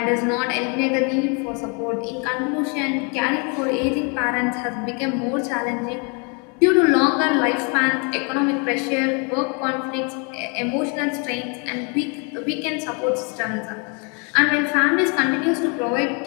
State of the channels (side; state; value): right; quieter; 34.9 dB